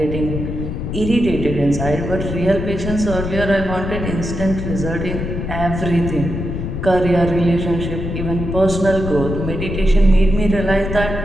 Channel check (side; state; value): left; noise; rumble, 4 dB below the sound